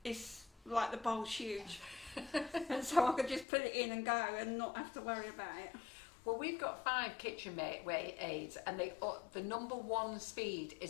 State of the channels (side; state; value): right; drops out; at 3.5 s